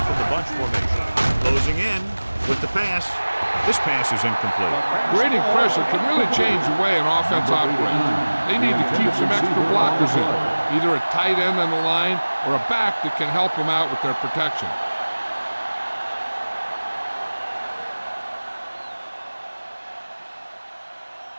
in the bunch formation. Closing in with the pass. This pass is incomplete. Creating pressure can really change the way an offense operates. They need to keep some extra blockers in, either a tight end on the line or a back that can help them out with their protection.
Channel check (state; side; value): inverted; both; correlation -1.00